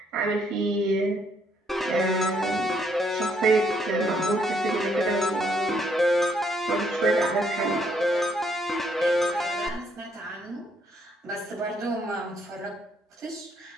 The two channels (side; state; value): both; normal; correlation 0.70